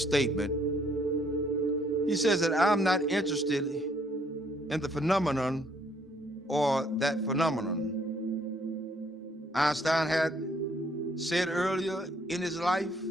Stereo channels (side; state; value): both; normal; correlation 0.66